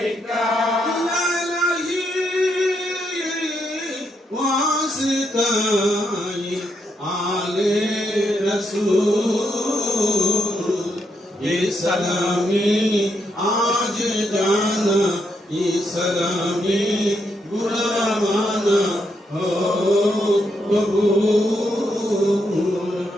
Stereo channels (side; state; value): both; normal; correlation 0.79